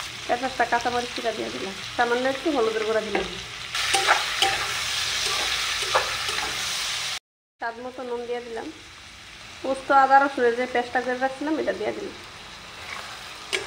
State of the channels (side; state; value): both; identical; correlation 1.00